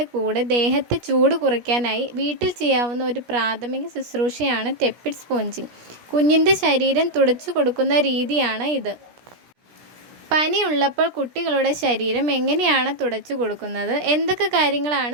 കൂടെ ദേഹത്തെ ചൂട് കുറയ്ക്കാനായി വീട്ടിൽ ചെയ്യാവുന്ന ഒരു പ്രാഥമിക ശുശ്രൂഷയാണ് ടെപ്പിഡ് സ്പോഞ്ചിങ്. കുഞ്ഞിൻ്റെ ശരീരം തുടച്ചു കൊടുക്കുന്ന രീതിയാണ് ഇത്. പനി ഉള്ളപ്പോൾ കുട്ടികളുടെ ശരീരം എങ്ങനെയാണ് തുടച്ചു കൊടുക്കുന്നത്, എന്തൊക്കെ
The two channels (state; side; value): late; left; 17 ms